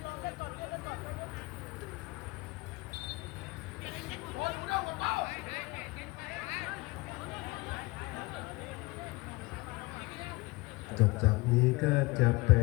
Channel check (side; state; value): right; quieter; 22.8 dB